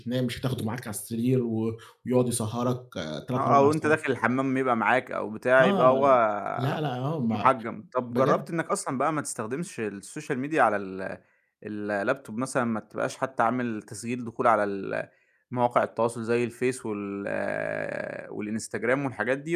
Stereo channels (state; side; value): identical; both; correlation 1.00